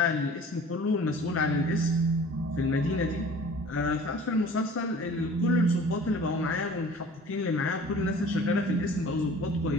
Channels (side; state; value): both; normal; correlation 0.46